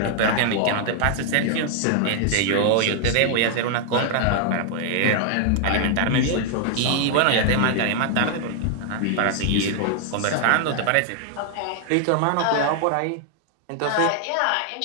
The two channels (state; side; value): different; both; correlation 0.00